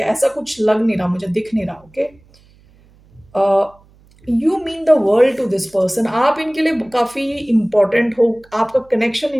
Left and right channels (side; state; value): right; noise; hum, 29 dB below the sound